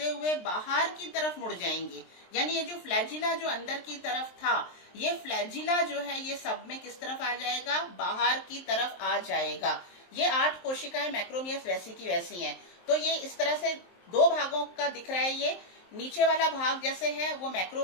हुए बाहर की तरफ मुड़ जाएंगी। यानी ये जो फ्लैजिला जो अंदर की तरफ था, ये फ्लैजिला जो है ये सब में किस तरफ आ जाएगा, बाहर की तरफ आ जाएगा। ये 8 कोशिकाएं मैक्रोमियर्स वैसी की वैसी हैं। तो ये इस तरह से 2 भागों का दिख रहा है। ये नीचे वाला भाग जैसे है वो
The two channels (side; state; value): right; late; 23 ms